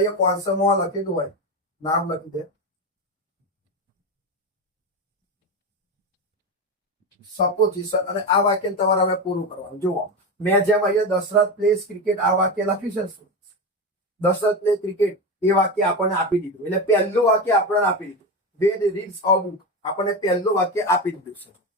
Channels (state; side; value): normal; both; correlation 0.18